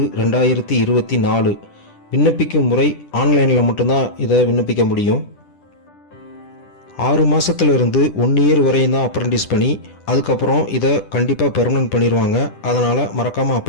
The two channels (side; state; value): right; late; 10 ms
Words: விண்ணப்பிக்கும் முறை ஆன்லைனில் மட்டும்தான் இதை விண்ணப்பிக்க முடியும். 6 மாதத்துலேருந்து 1 இயர் வரையும் தான் அப்ரண்டிஸ் பண்ணி, அதுக்கப்புறம் இதை கண்டிப்பாக பெர்மனன்ட் பண்ணிடுவாங்க. அதனால் மறக்காமல்